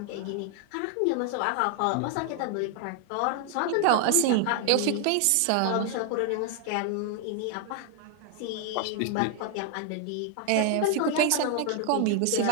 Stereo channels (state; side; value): different; both; correlation 0.00